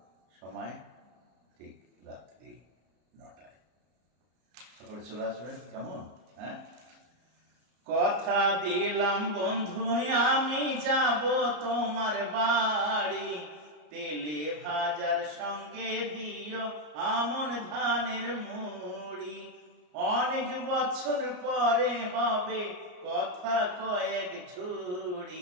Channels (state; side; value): late; left; 33 ms